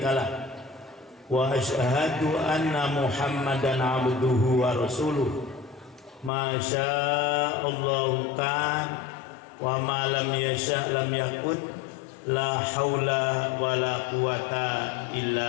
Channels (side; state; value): right; drops out; at 6.3 s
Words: wa asyhadu anna Muhammadan abduhu wa rasuluh. Ma sya'allahu kan wa ma lam yasha' lam yakun. La haula wa la quwata